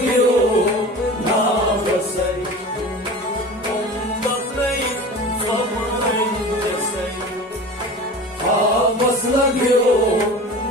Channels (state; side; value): normal; both; correlation 0.35